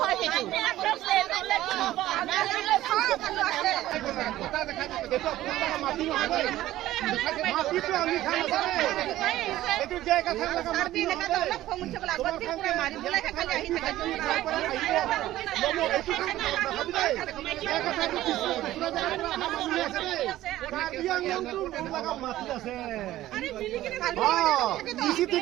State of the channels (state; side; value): quieter; left; 14.8 dB